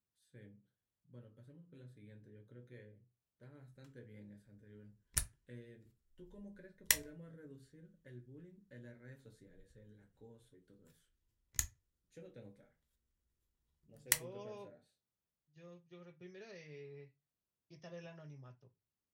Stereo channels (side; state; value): both; identical; correlation 1.00